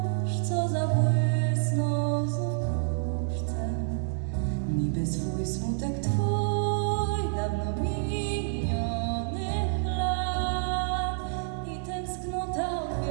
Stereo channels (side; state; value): left; silent; 56 dB below the other